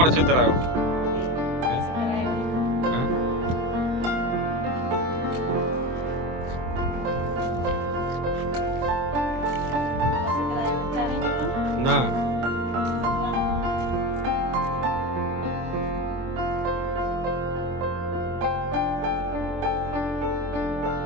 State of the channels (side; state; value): left; late; 23 ms